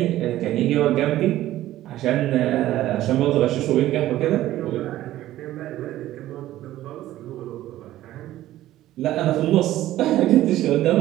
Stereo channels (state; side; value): quieter; left; 14.4 dB